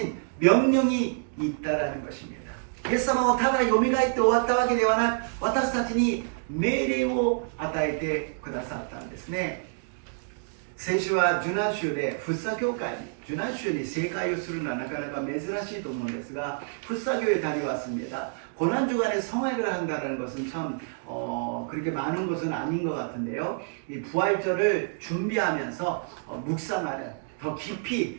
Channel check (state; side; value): silent; left; digital silence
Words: 명령이 있다라는 것입니다. イエス様はただ蘇って終わったわけではなく、私たちに命令を与えてくださったんですね。先週は受難週で福生教会に受難週に正解をするのはなかなか珍しいと思うんですが福生교회에 다녀왔습니다. 고난주간에 성화를 한다는 것은 참 그렇게 많은 것은 아닌 것 같은데요. 이 부활절을 준비하면서 묵상하는 더